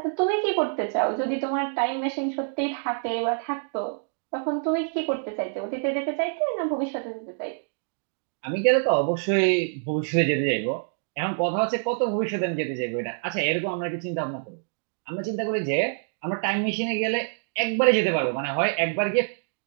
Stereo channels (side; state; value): left; silent; digital silence